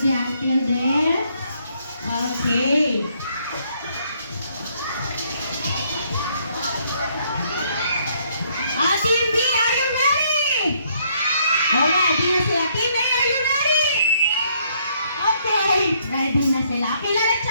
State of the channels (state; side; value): inverted; both; correlation -0.69